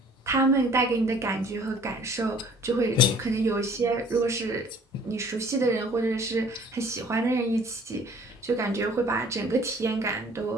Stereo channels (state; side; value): normal; both; correlation 0.53